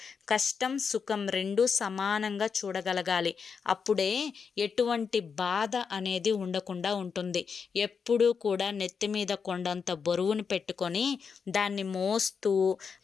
కష్టం సుఖం రెండూ సమానంగా చూడగలగాలి. అప్పుడే ఎటువంటి బాధ అనేది ఉండకుండా ఉంటుంది. ఎప్పుడూ కూడా నెత్తి మీద కొండంత బరువును పెట్టుకొని దాన్ని మోస్తూ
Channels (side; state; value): right; quieter; 6.0 dB